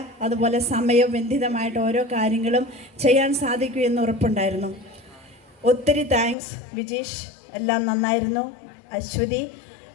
അതുപോലെ സമയബന്ധിതമായിട്ട് ഓരോ കാര്യങ്ങളും ചെയ്യാൻ സാധിക്കുമെന്ന് ഉറപ്പുണ്ടായിരുന്നു. ഒത്തിരി താങ്ക്സ് വിജീഷ്, എല്ലാം നന്നായിരുന്നു. അശ്വതി,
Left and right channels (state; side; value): drops out; right; at 6.4 s